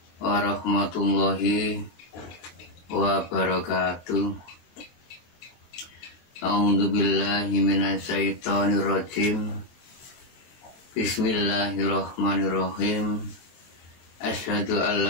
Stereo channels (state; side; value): late; right; 23 ms